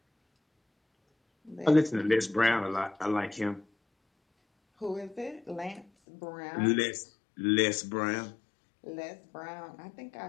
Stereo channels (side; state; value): right; drops out; at 5.9 s